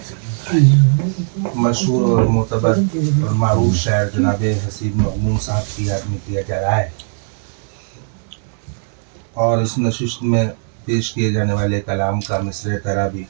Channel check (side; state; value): left; silent; 67 dB below the other